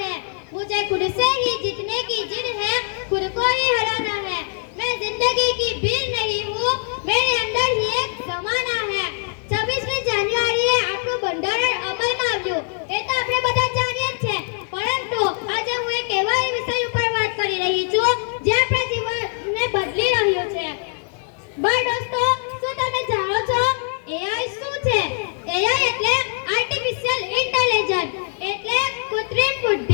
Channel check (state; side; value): silent; right; 55 dB below the other